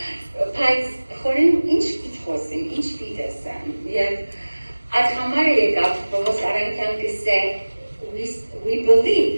Բայց խորին ինչ պիտ խոսիմ, ինչ պիտ էսեմ և այդ համար եկավ Պողոս Արանքյան կսե We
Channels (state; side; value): inverted; both; correlation -1.00